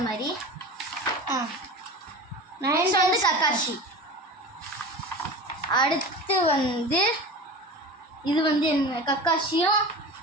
மாதிரி. நெக்ஸ்ட் வந்து கக்காஷி. அடுத்து வந்து இது வந்து என்ன? கக்காஷியும்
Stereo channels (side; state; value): both; normal; correlation 0.32